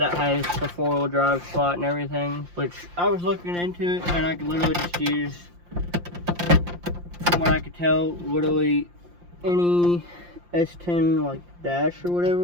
has the 4-wheel drive slot and everything, which I was looking into it, and I could literally just use, from what I could tell, literally any S10 like dash or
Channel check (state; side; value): late; left; 5.7 ms